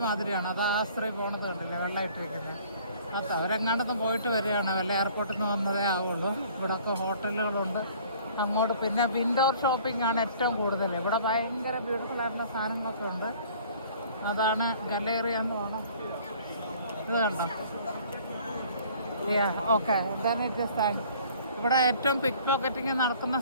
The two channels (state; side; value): inverted; both; correlation -0.53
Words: മാതിരിയാണ്. അത് ആ സ്ത്രീ പോണത് കണ്ടില്ലേ, വെള്ളമിട്ടിരിക്കുന്നത്. അത് അവരെങ്ങാണ്ടൊന്നും പോയിട്ട് വരികയാണ്. വല്ല എയർപോർട്ടിൽ നിന്ന് വന്നതേ ആവുള്ളൂ. ഇവിടെയൊക്കെ ഹോട്ടലുകളുണ്ട്. അങ്ങോട്ട് പിന്നെ ഇൻഡോർ ഷോപ്പിംഗ് ആണ് ഏറ്റവും കൂടുതൽ. ഇവിടെ ഭയങ്കര ബ്യൂട്ടിഫുൾ ആയിട്ടുള്ള സാധനങ്ങളൊക്കെ ഉണ്ട്. അതാണ് ഗലേറിയ എന്ന് വേണം. ഇത് കണ്ടോ? ഓക്കെ, then it just ഇവിടെ ഏറ്റവും പിക്ക് പോക്കറ്റിങ് നടക്കുന്ന